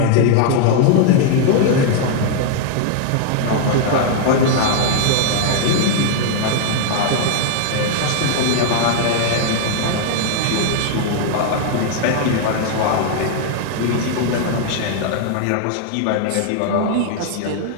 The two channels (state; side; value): different; both; correlation 0.00